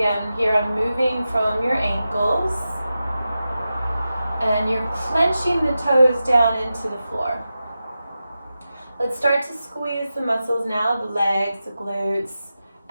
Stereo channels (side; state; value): both; inverted; correlation -0.92